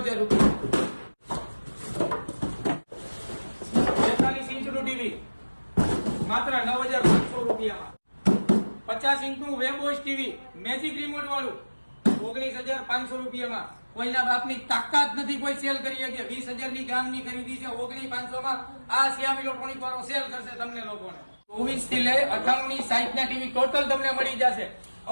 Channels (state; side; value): inverted; both; correlation -1.00